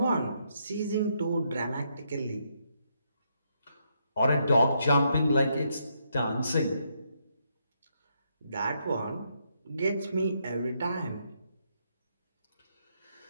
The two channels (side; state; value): both; inverted; correlation -0.77